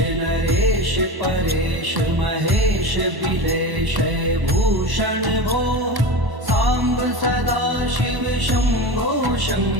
नरेश परेश महेश बिलेश भूषण भो साम्ब सदा शिव शम्भो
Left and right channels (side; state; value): left; late; 1.1 ms